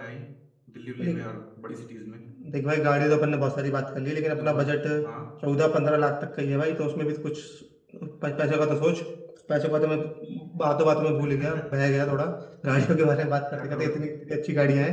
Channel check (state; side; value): identical; both; correlation 1.00